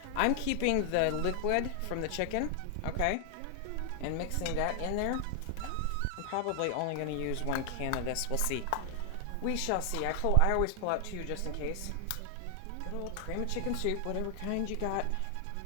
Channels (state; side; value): different; both; correlation 0.00